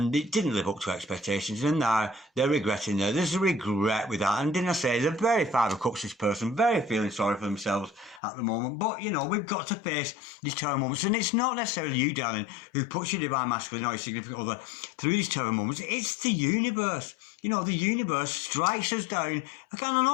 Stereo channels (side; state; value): right; drops out; at 8.2 s